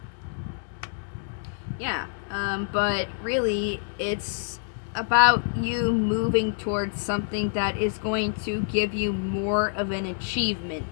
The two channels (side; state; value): right; silent; digital silence